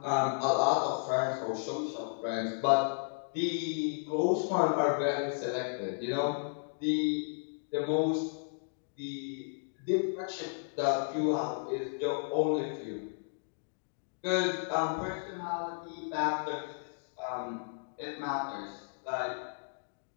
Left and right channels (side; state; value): right; silent; digital silence